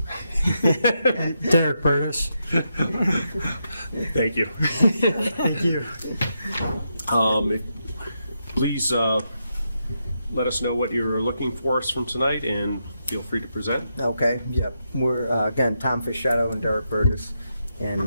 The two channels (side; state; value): both; inverted; correlation -0.83